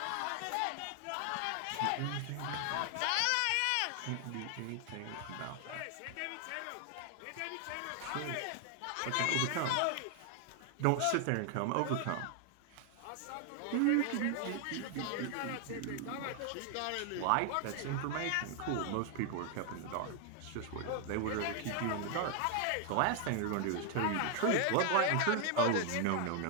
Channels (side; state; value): both; different; correlation 0.00